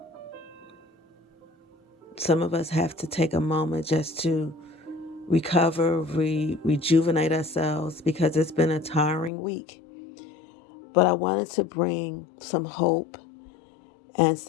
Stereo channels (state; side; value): drops out; right; at 9.3 s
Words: Some of us have to take a moment just to recover, rejuvenate ourselves because it's been a tiring week. But I wanted to bring some hope and